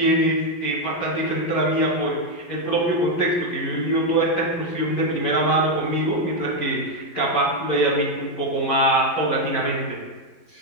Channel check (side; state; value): right; late; 12 ms